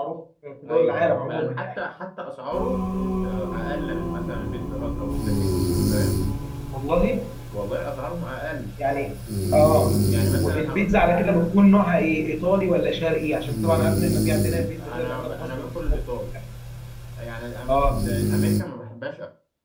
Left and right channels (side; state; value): both; identical; correlation 1.00